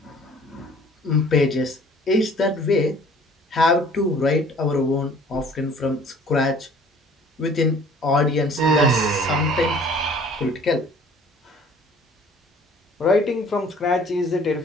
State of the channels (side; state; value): both; normal; correlation 0.53